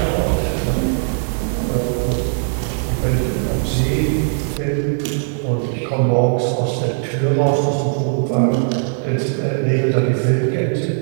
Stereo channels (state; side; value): silent; left; 67 dB below the other